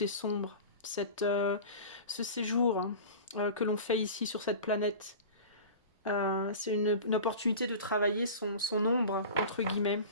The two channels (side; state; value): both; inverted; correlation -0.35